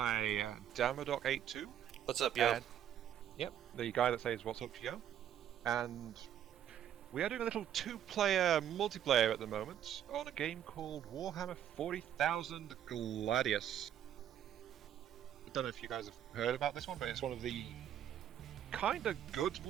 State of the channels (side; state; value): left; quieter; 10.3 dB